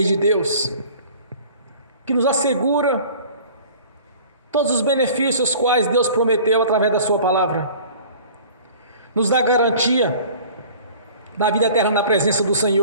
de Deus, que nos assegura todos os benefícios quais Deus prometeu através da sua palavra, nos dá garantia da vida eterna na presença do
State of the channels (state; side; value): inverted; both; correlation -0.46